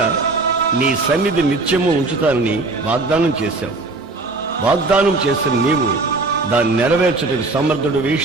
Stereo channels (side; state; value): left; quieter; 3.3 dB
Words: నీ సన్నిధి నిత్యము ఉంచుతానని వాగ్దానం చేశావు. వాగ్దానం చేసిన నీవు దాన్ని నెరవేర్చుటకు సమర్థుడివి,